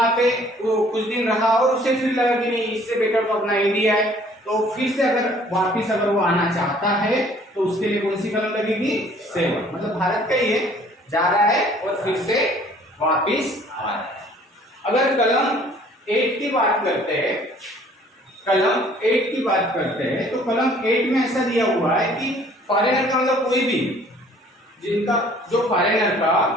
पे वो कुछ दिन रहा और उसे फिर लगा कि नहीं, इससे बेटर तो अपना इंडिया है, तो फिर से अगर वापिस अगर वो आना चाहता है तो उसके लिए कौन सी कलम लगेगी? 7, मतलब भारत का ही है, जा रहा है और फिर से वापिस आ रहा है। अगर कलम 8 की बात करते हैं, कलम 8 की बात करते हैं, तो कलम 8 में ऐसा दिया हुआ है कि फॉरेनर का मतलब कोई भी, जिनका जो फॉरेनर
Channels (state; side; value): normal; both; correlation 0.56